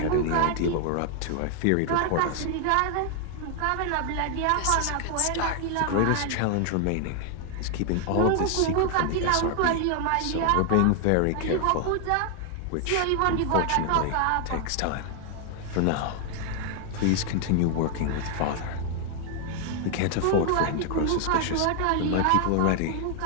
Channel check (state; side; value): different; both; correlation 0.00